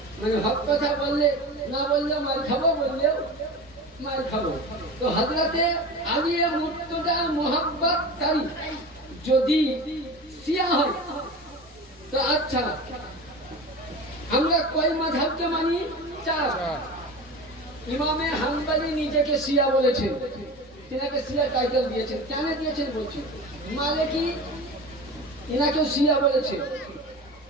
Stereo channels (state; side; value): normal; both; correlation 0.31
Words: মানে হক কথা বললে না বললে মার খাবো, বললেও মার খাবো। তো হযরতে আলী মুর্তজা মোহাব্বতকারী যদি শিয়া হয় তো আচ্ছা আমরা কয় মাযহাবকে মানি? 4। ইমামে হাম্বলি নিজেকে শিয়া বলেছেন, তিনাকে শিয়া টাইটেল দিয়েছেন। কেন দিয়েছেন বলছি, মালিকি ইনাকেও শিয়া বলেছে।